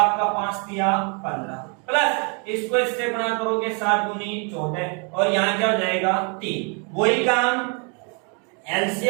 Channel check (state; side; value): quieter; left; 36.7 dB